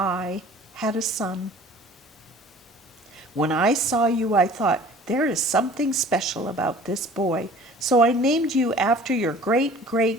had a son. When I saw you, I thought, there is something special about this boy. So I named you after your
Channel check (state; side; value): normal; both; correlation 0.47